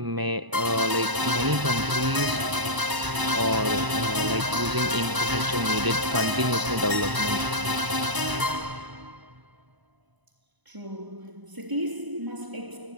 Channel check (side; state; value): left; late; 1.0 ms